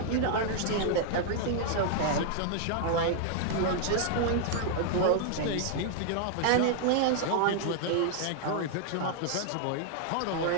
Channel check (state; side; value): different; both; correlation 0.00